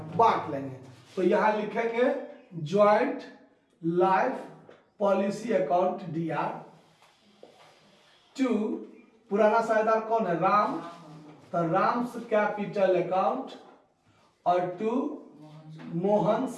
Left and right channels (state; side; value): identical; both; correlation 1.00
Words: बांट लेंगे। तो यहां लिखेंगे joint life policy account DR to, पुराना साझेदार कौन है, राम, तो राम्स कैपिटल अकाउंट, और टू